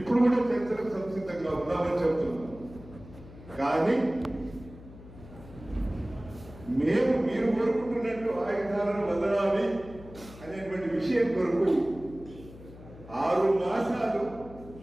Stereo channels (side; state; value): left; noise; hum, 18 dB below the sound